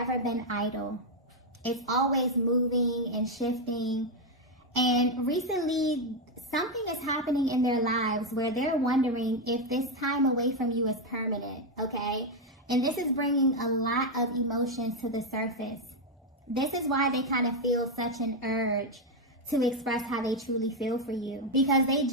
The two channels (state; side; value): normal; both; correlation 0.04